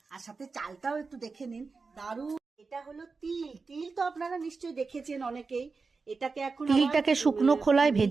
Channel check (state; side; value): quieter; left; 4.4 dB